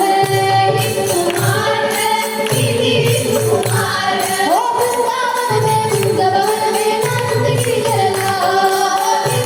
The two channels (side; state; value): both; identical; correlation 1.00